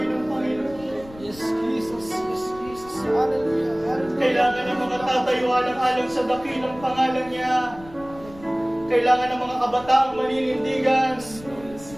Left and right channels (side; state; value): left; noise; rumble, 19 dB below the sound